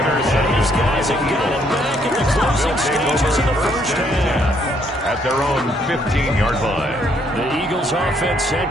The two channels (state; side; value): normal; both; correlation 0.69